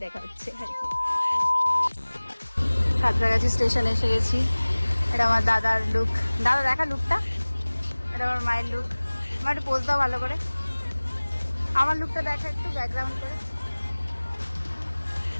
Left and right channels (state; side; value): inverted; both; correlation -1.00